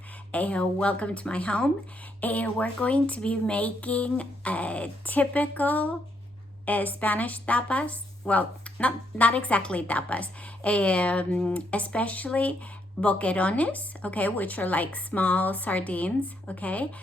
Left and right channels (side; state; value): both; normal; correlation 0.75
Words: Welcome to my home. We're going to be making a typical Spanish tapas. Well, not exactly tapas, especially boquerones, okay, which are like small sardines, okay.